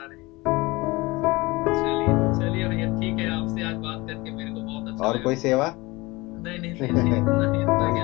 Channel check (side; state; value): right; quieter; 22.5 dB